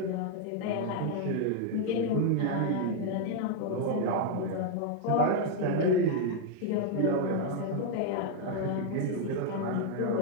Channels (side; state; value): both; different; correlation 0.00